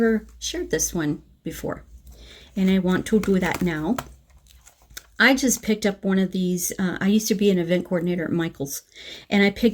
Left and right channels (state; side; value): identical; both; correlation 1.00